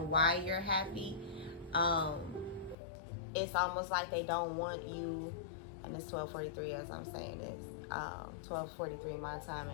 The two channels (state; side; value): drops out; right; at 2.8 s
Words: why you're happy. It's almost like they don't want you, and it's 12:43 as I'm saying this, 12:43 my time,